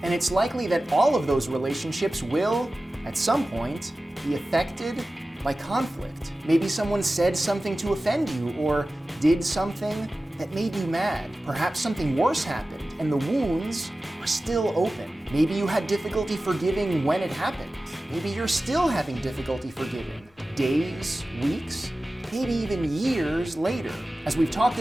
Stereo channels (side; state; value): both; normal; correlation 0.96